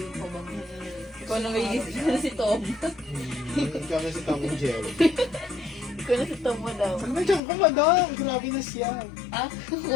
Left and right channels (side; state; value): right; drops out; at 7.4 s